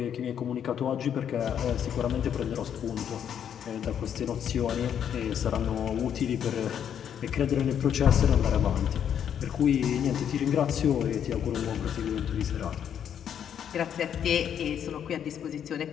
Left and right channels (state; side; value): quieter; right; 8.9 dB